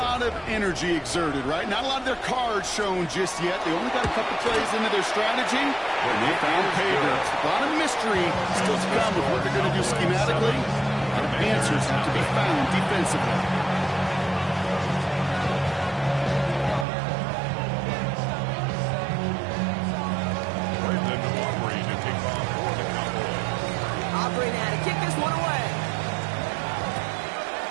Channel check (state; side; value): drops out; left; at 16.9 s